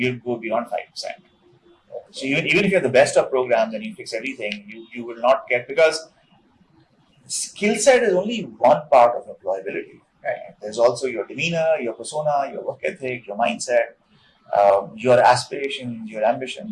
go beyond 5%. So even if you have the best of programs and you fix everything, you will not get, because skill set is only one part of employability. Right? There's also your demeanor, your persona, your work ethic, your mindset, your aspirations, your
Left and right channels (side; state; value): both; identical; correlation 1.00